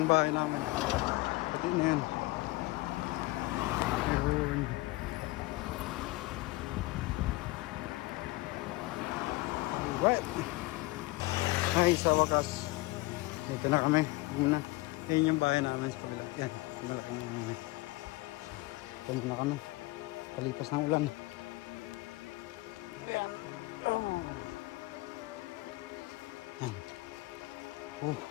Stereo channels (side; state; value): right; quieter; 21.3 dB